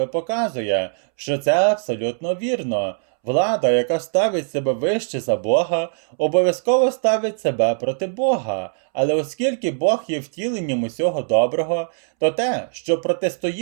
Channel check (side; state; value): left; silent; 65 dB below the other